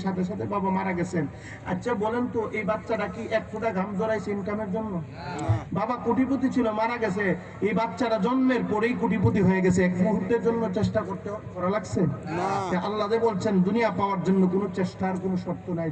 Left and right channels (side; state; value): both; identical; correlation 1.00